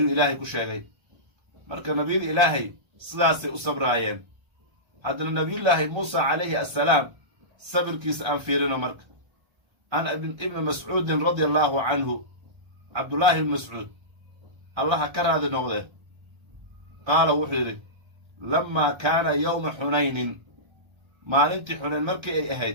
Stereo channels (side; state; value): left; late; 1.3 ms